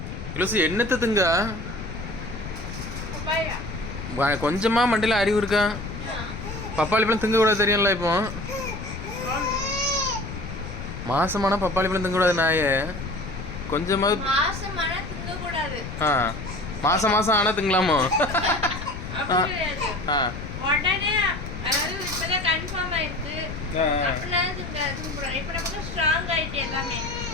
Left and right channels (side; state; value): left; noise; rumble, 8 dB below the sound